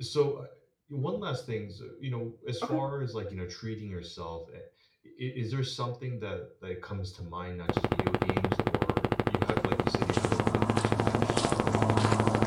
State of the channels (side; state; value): both; identical; correlation 1.00